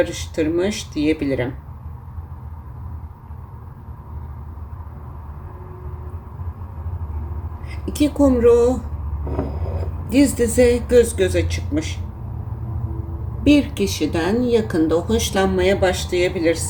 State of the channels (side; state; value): both; identical; correlation 1.00